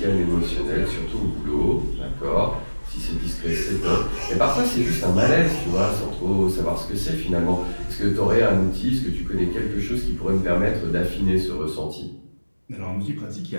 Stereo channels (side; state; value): both; inverted; correlation -1.00